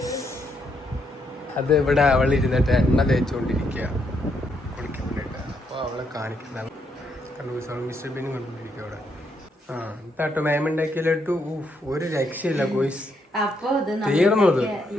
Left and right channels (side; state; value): both; normal; correlation 0.76